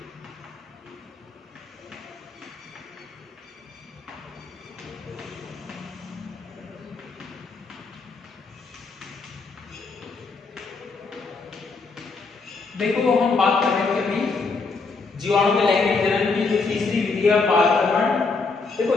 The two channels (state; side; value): quieter; right; 4.2 dB